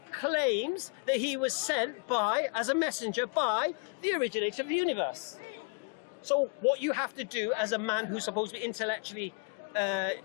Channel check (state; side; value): quieter; right; 35.6 dB